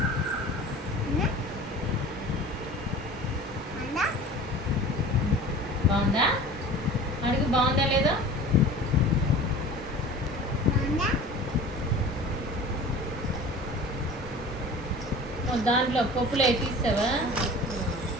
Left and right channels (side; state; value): both; normal; correlation 0.40